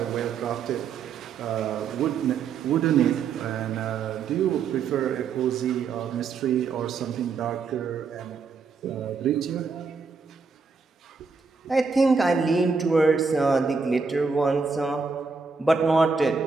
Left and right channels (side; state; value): left; quieter; 5.0 dB